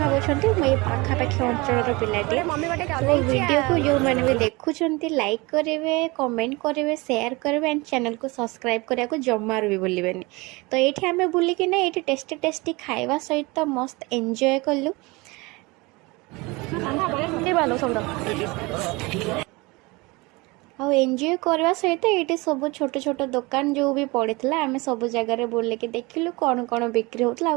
मुझे पाखापाखि अंचल पिलाटे तो वीडियो को जो मैंने भी देखुंट लाइक करेंगे कमेंट करेंगे शेयर करेंगे एंड चैनल को सब्सक्राइब करने को जमार भी भूलिबेनि। तो ये आम बुलिकिना ये टेस्टी टेस्टी खाଇବା सहित मस्त एंजॉय कलु एंजॉय करवा सहित ये सब छोट छोट दुकान जो भी पड़ता आम सब जगह बुलिक देखिलु कौन कौन बिक्री होता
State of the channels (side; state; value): left; quieter; 24.6 dB